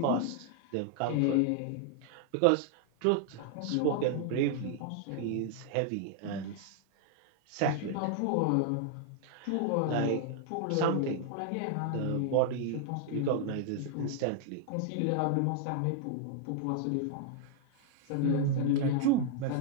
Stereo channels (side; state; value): both; different; correlation 0.00